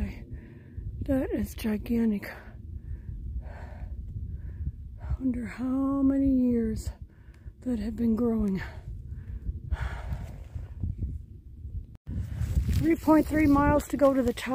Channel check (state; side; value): identical; both; correlation 1.00